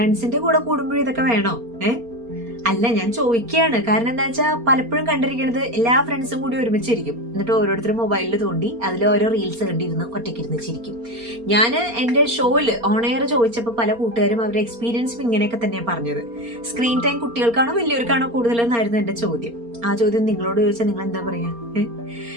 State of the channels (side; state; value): left; late; 4.3 ms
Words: കൂടെ കൂടുമ്പോഴും ഇതൊക്കെ വേണോ? അല്ല, ഞാൻ ചോദിക്കുകയാണ്. കാരണം എന്താ വെച്ചാൽ പലപ്പോഴും കണ്ടിരിക്കുന്നത് എല്ലാ ഫ്രണ്ട്സും കൂടി ഒരുമിച്ചിരിക്കും, എന്നിട്ട് ഓരോരുത്തരും മൊബൈലിൽ തോണ്ടി അതിൽ ഓരോ റീൽസ് കണ്ടിരുന്ന് ഒറ്റയ്ക്കിരുന്ന് ചിരിക്കും. ഞാൻ എൻ്റെ ഷോയില് ഓൺ എയർ ചോദിച്ചപ്പോൾ പല കൂട്ടുകാരും അവരുടെ എക്സ്പീരിയൻസും ഇങ്ങനെയൊക്കെ തന്നെയാണ് പറഞ്ഞത്. സ്ക്രീൻ ടൈം കുട്ടികൾക്കാണോ വലിയവർക്കാണോ കൂടുതലെന്നായിരുന്നു എൻ്റെ ചോദ്യം. ആ ചോദ്യം നിങ്ങളോട് ചോദിച്ചാൽ നിങ്ങൾ എന്താ പറയാ?